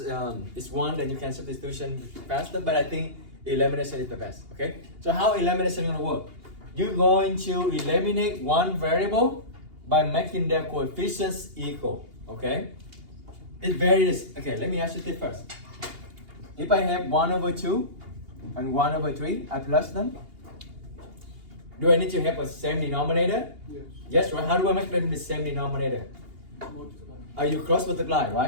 1, then you can substitution faster. But I think elimination is the best. Okay? So how elimination gonna work? You're going to eliminate one variable by making their coefficients equal. Okay? It varies. Okay, let me ask you this first. If I have 1/2 and 1/3, I plus them. Do I need to have a same denominator? Yes. Yes, right? How do I make them the same denominator? Multiply. Are you cross multiply,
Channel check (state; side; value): late; left; 2.8 ms